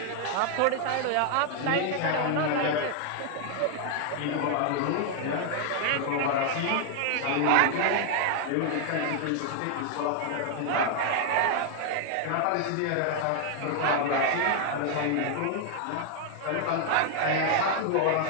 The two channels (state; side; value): different; both; correlation 0.00